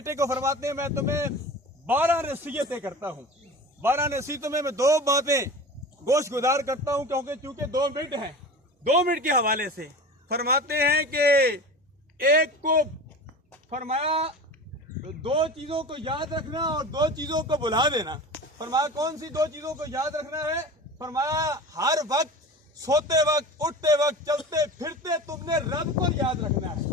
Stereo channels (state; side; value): normal; both; correlation 0.34